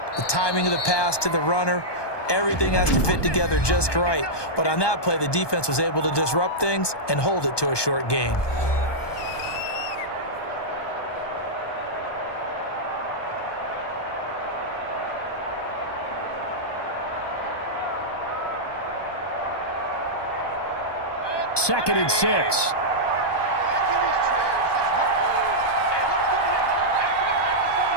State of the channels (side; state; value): right; late; 1.2 ms